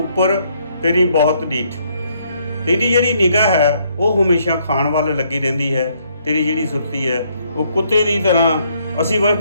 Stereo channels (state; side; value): inverted; both; correlation -0.70